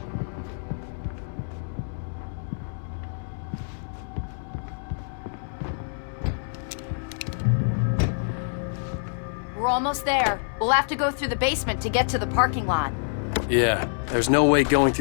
We're almost there. We'll have to go through the basement to get to the parking lot. Yeah, there's no way going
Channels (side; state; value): right; silent; digital silence